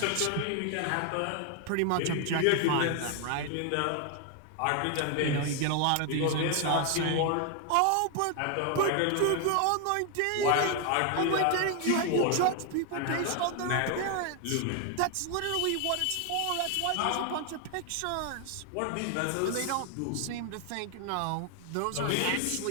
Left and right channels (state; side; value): different; both; correlation 0.01